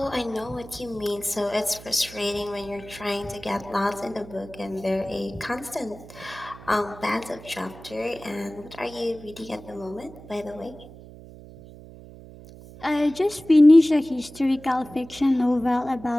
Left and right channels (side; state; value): right; noise; hum, 18 dB below the sound